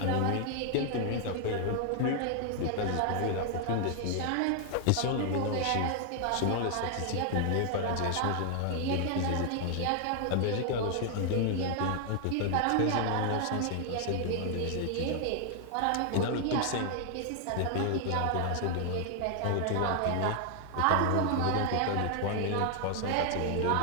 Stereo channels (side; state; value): both; different; correlation 0.00